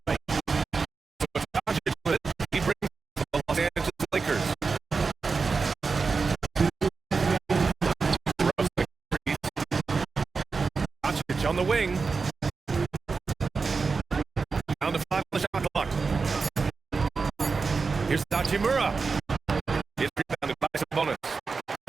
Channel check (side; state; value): left; quieter; 4.7 dB